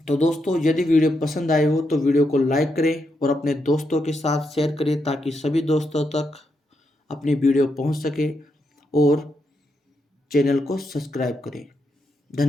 दोस्तों यदि वीडियो पसंद आए हो तो वीडियो को लाइक करें और अपने दोस्तों के साथ शेयर करें ताकि सभी दोस्तों तक अपनी वीडियो पहुंच सके। और चैनल को सब्सक्राइब करें।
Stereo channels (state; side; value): normal; both; correlation 0.82